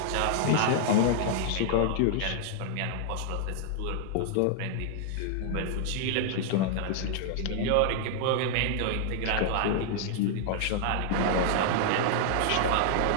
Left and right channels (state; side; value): different; both; correlation -0.01